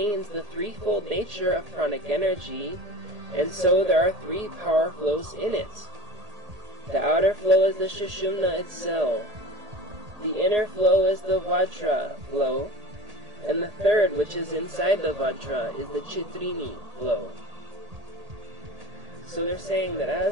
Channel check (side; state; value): left; late; 1.8 ms